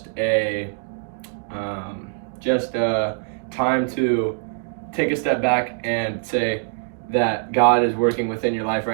a time to take a step back and say that God is working within your life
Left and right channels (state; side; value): silent; left; digital silence